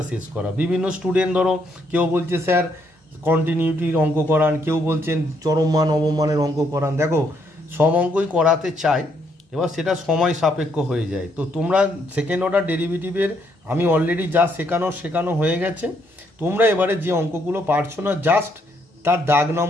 শেষ করা। বিভিন্ন স্টুডেন্ট ধরো কেউ বলছে স্যার কন্টিনিউটির অঙ্ক করান, কেউ বলছেন চরম মান অবমানের অঙ্ক করান। দেখো সব অঙ্কই করাতে চাই, এবার সেটা সময় সাপেক্ষ হয়ে যায়। তো তোমরা সেকেন্ড অর্ডার ডেরিভেটিভের আমি অলরেডি যা শেখানো হয়ে গেছে। তোমরা এবারে যে অঙ্কগুলো পারছো না, জাস্ট তার দাগ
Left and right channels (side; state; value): both; normal; correlation 0.72